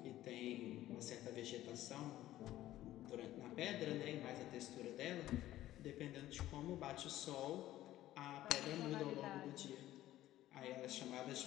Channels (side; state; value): right; quieter; 14.4 dB